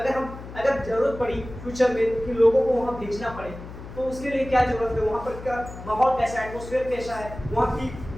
जरूरत पड़ी फ्यूचर में कि लोगों को वहाँ भेजना पड़े तो उसके लिए क्या जरूरत है, वहाँ पर क्या माहौल कैसा है, एटमॉस्फेयर कैसा है, वहाँ की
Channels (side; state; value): left; noise; hum, 13 dB below the sound